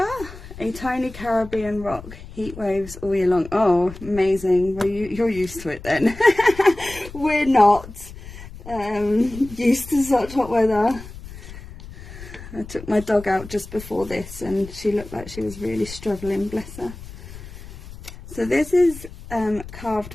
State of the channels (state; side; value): noise; left; rumble, 15 dB below the sound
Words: a tiny Caribbean rock. Heat waves all year long. Oh, amazing. Well, you're used to it then. We're not used to such hot weather. I took my dog out just before this and she looked like she was really struggling, bless her. So this is